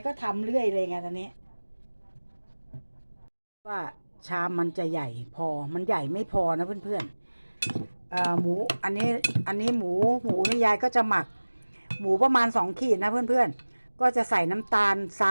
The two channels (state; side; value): inverted; both; correlation -1.00